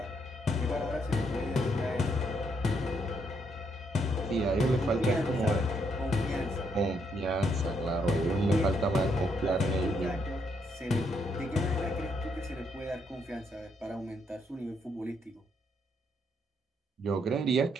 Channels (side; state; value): both; normal; correlation 0.75